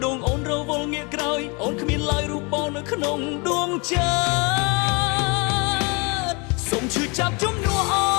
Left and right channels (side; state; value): right; quieter; 30.2 dB